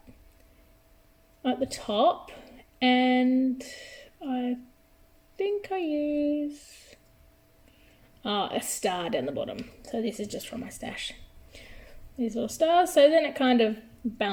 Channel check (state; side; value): identical; both; correlation 1.00